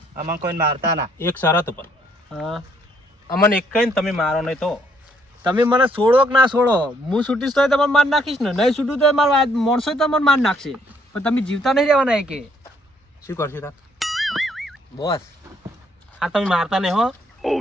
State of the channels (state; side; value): normal; both; correlation 0.68